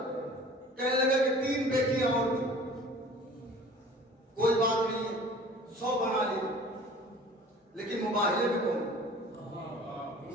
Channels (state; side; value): normal; both; correlation 0.46